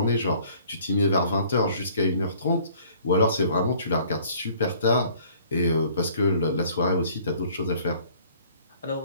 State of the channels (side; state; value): both; inverted; correlation -0.56